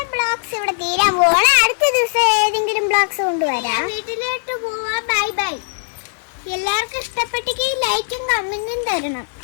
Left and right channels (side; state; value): right; silent; 66 dB below the other